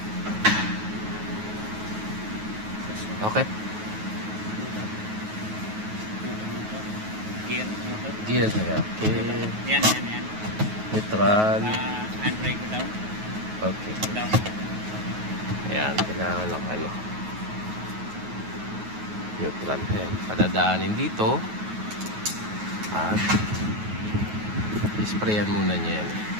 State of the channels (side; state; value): left; late; 9.3 ms